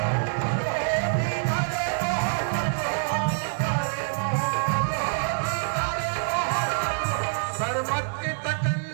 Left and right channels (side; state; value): left; silent; 56 dB below the other